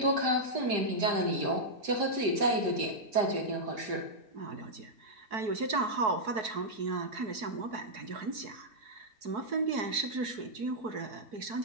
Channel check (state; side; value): late; left; 4.6 ms